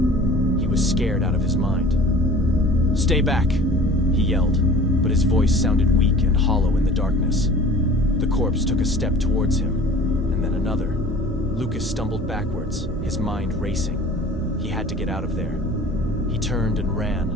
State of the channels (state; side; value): normal; both; correlation 0.44